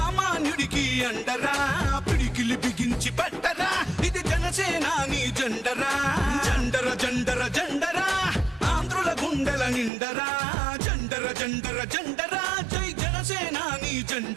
అండరా పిడికిలి బిగించి పట్టరా ఇది జనసేనాని జెండరా జండర జండర జండరా ఆంధ్రుల గుండెల నిండరా జండర జండర జండరా జై జనసేనాని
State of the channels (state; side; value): drops out; left; at 9.9 s